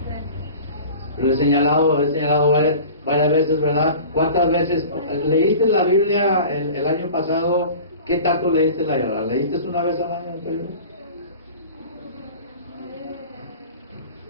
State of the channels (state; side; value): inverted; both; correlation -0.40